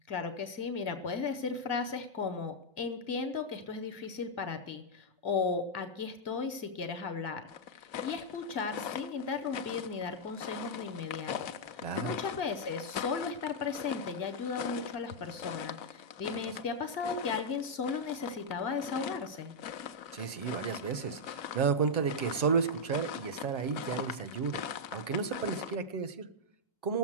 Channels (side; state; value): right; late; 2.0 ms